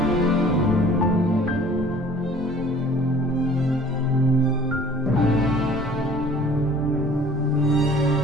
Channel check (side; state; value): both; normal; correlation 0.51